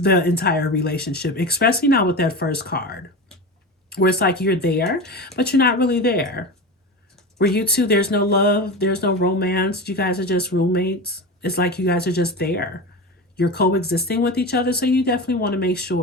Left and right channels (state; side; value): normal; both; correlation 0.26